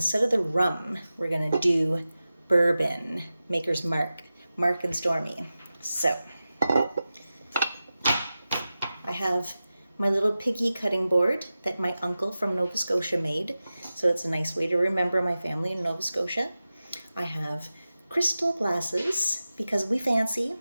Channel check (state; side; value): inverted; both; correlation -0.94